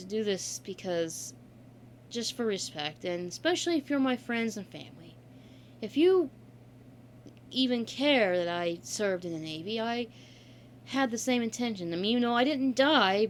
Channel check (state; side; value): identical; both; correlation 1.00